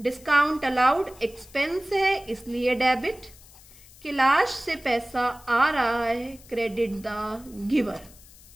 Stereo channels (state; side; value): noise; left; hiss, 23 dB below the sound